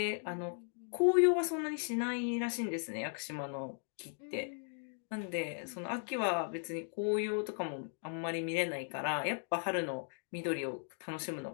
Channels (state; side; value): silent; right; 53 dB below the other